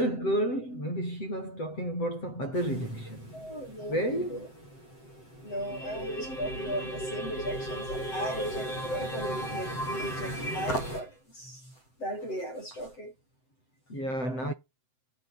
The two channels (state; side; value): late; right; 7.8 ms